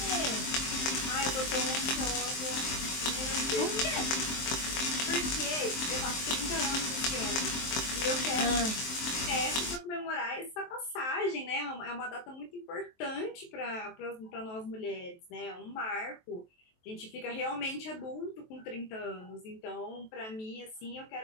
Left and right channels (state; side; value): late; right; 23 ms